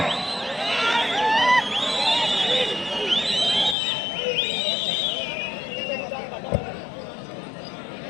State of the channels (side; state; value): right; drops out; at 3.8 s